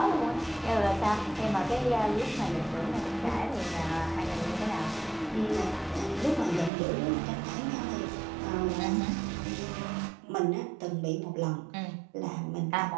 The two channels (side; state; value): left; drops out; at 6.7 s